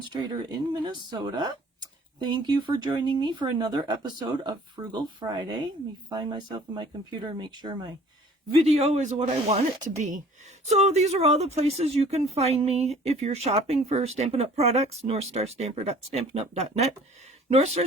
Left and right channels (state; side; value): normal; both; correlation 0.51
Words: in Minnesota. Thank you for joining me for another episode of Frugal Friday. Let me find myself in my computer and make sure my video is what I want it to be. So these are all the places you can find me if you're shopping for Stampin' Up! Products. NorthStarStamper.stampinup.net.